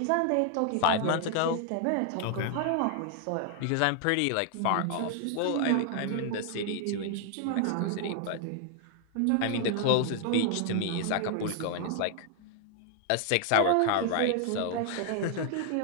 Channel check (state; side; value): different; both; correlation 0.00